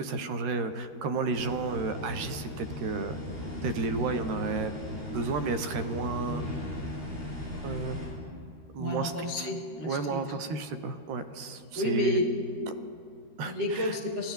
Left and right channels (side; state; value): left; late; 13 ms